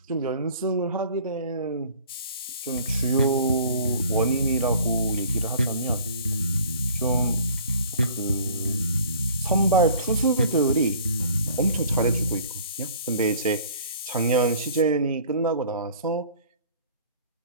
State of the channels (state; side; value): inverted; both; correlation -0.50